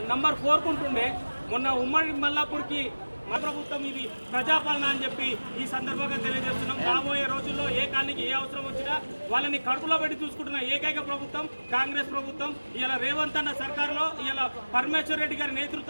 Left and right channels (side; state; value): both; inverted; correlation -1.00